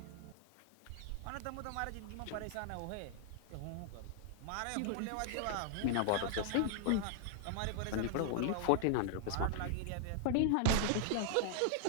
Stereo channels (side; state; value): both; different; correlation 0.00